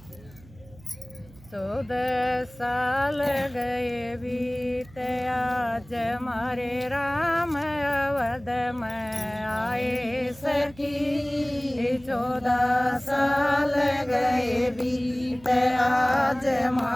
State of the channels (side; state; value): right; noise; hum, 23 dB below the sound